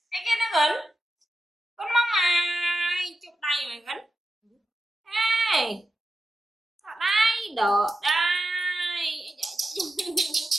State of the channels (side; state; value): both; normal; correlation 0.91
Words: Cái kia nó gần. Con mong mày, chụp đây mày gắn. Ê, ở đây, đỡ đây.